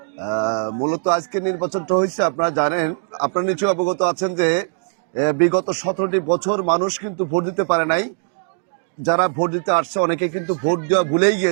মূলত আজকে নির্বাচনটা হয়েছে, আপনারা জানেন, আপনারা নিশ্চয়ই অবগত আছেন যে বিগত 17টি বছর মানুষ কিন্তু ভোট দিতে পারে নাই। যারা ভোট দিতে আসছে অনেকে কিন্তু ভোট দেওয়া ভুলেই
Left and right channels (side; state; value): left; silent; digital silence